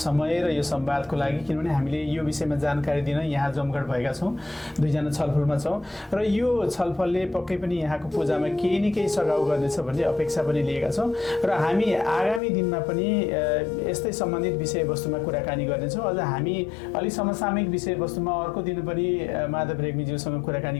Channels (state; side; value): drops out; right; at 12.4 s